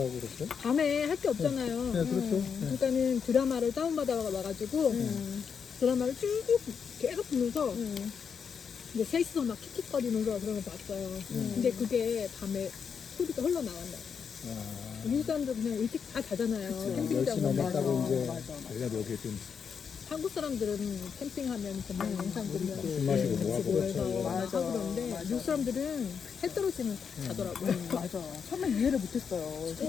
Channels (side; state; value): right; quieter; 6.6 dB